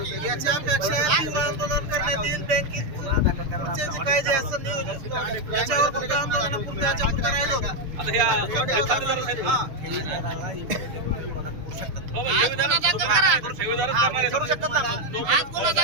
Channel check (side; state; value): left; late; 6.7 ms